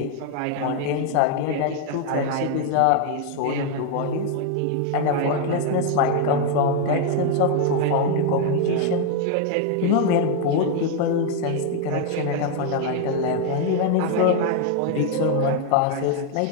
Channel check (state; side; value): different; both; correlation 0.01